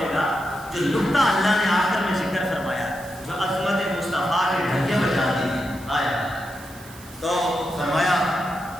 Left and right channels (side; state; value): right; noise; hiss, 20 dB below the sound